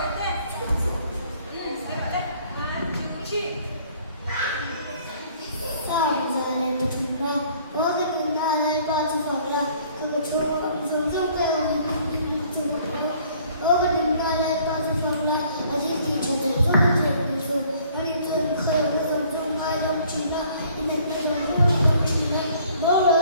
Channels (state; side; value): inverted; both; correlation -0.59